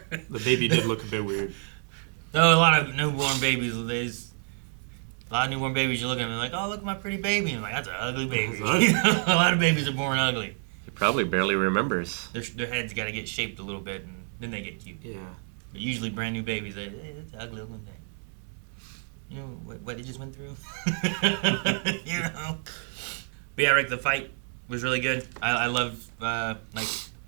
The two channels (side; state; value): left; silent; 56 dB below the other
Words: The baby did look a bit weird. No, a lot of newborn babies. A lot of newborn babies, you look at them and like, oh, look at my pretty baby. And I'm like, that's an ugly baby. A lot of babies are born ugly. He probably barely remembers. Their heads got to get shaped a little bit, and then they get cute. Yeah. But usually brand new babies, that's an ugly looking thing. you know what he just went through. You know. But yeah, Rick, the fight was really good. I love like